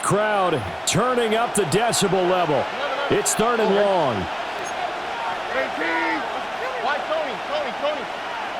crowd turning up the decibel level. It's 3rd and long. Why Tony?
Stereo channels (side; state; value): both; identical; correlation 1.00